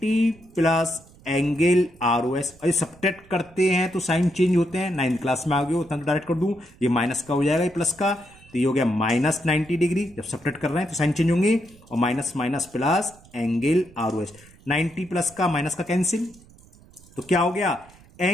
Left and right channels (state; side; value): noise; right; rumble, 25 dB below the sound